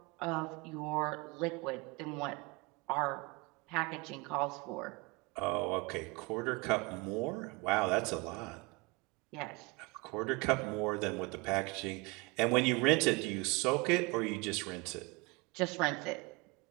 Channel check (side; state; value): left; quieter; 26.4 dB